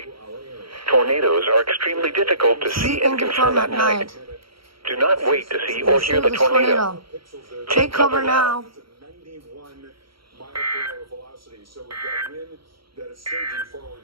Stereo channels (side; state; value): left; late; 0.74 ms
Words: Tornadoes are extremely difficult to see and confirm at night. Do not wait to see or hear the tornado. Take cover now. 91 mile per hour velocity. So we've got wind that is surging forward